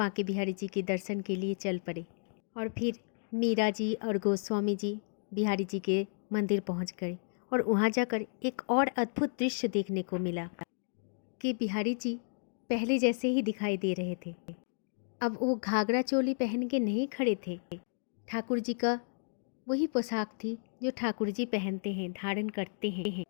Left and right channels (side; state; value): right; silent; digital silence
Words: बिहारी जी के दर्शन के लिए चल पड़े। और फिर मीरा जी और गोस्वामी जी बिहारी जी के मंदिर पहुंच गए और वहां जाकर एक और अद्भुत दृश्य देखने को मिला कि बिहारी जी पहले जैसे ही दिखाई दे रहे थे। अब वो घाघरा चोली पहन के नहीं खड़े थे, ठाकुर जी का वही पोशाक थी जो ठाकुर जी पहनते हैं, धारण करते हैं।